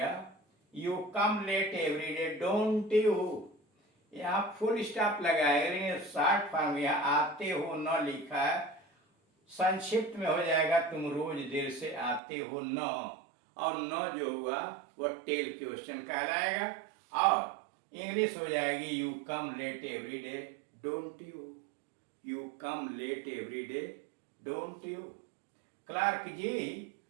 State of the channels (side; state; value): left; drops out; at 12.2 s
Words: you come late every day, don't you? यहाँ फुल स्टॉप लगाएगा, शॉर्ट फॉर्म यहाँ आते हो न लिखा है, संक्षिप्त में हो जाएगा तुम रोज देर से आते हो न। और न जो हुआ वह टेल क्वेश्चन कहलाएगा, और इंग्लिश हो जाएगी you come late every day, don't you? You come late every day, don't you? Clerk ji